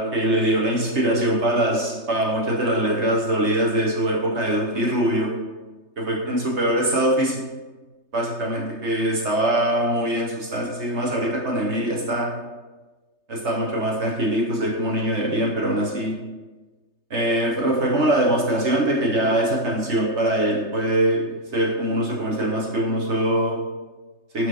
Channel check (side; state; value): left; late; 3.3 ms